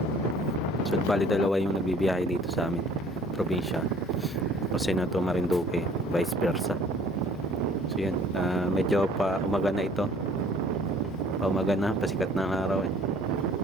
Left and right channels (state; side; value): normal; both; correlation 0.54